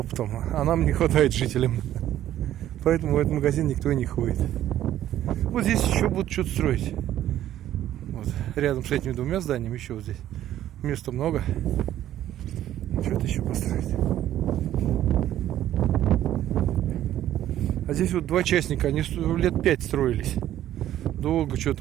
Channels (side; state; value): left; quieter; 12.4 dB